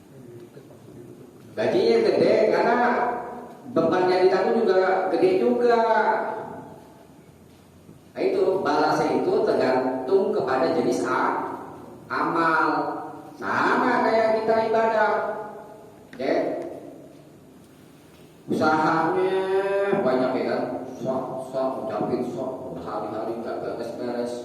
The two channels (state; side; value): identical; both; correlation 1.00